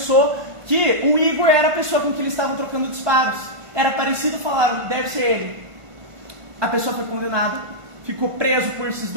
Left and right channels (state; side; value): late; left; 1.5 ms